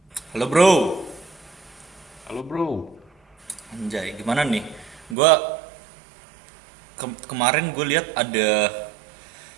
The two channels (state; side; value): drops out; left; at 5.2 s